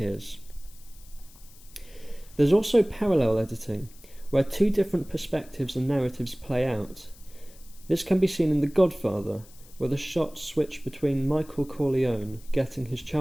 There's also parallel editing, where two different perspectives and narratives play out. This can be seen in The Godfather, where the shots switch between Michael Corleone getting his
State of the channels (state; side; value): noise; left; hiss, 24 dB below the sound